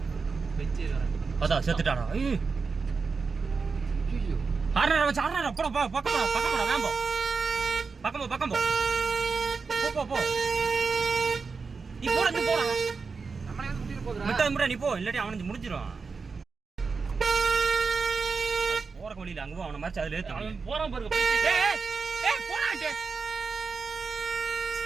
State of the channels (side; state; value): left; quieter; 4.8 dB